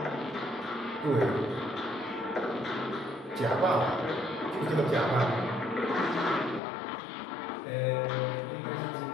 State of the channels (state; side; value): drops out; right; at 6.6 s